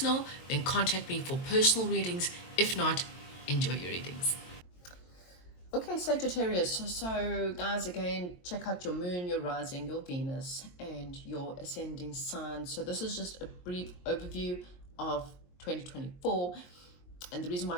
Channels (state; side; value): late; right; 22 ms